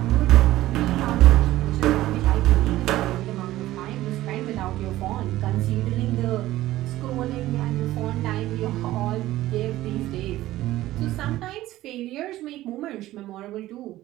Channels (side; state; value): left; quieter; 15.6 dB